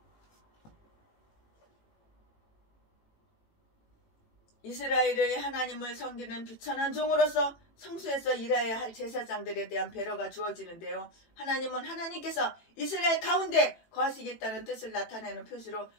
이스라엘의 하나님을 섬기는 비천한 종으로서 성소에서 일해야 할 제사장들에 대한 배려가 주어지는데요. 하나님은 하나님께서 이스라엘 가운데 거하시겠다는 뜻을 나타내는 표시로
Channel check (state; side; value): late; right; 18 ms